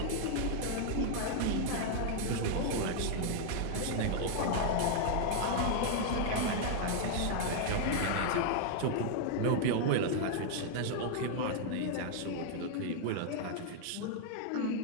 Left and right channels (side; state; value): both; different; correlation 0.00